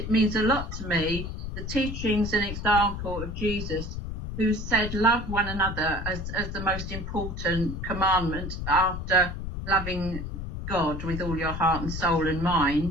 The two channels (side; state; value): left; noise; rumble, 6 dB below the sound